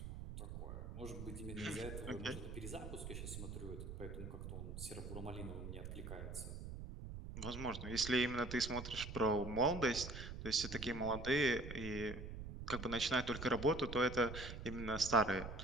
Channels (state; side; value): noise; right; rumble, 8 dB below the sound